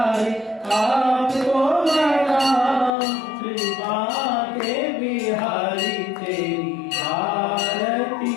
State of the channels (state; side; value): drops out; right; at 2.9 s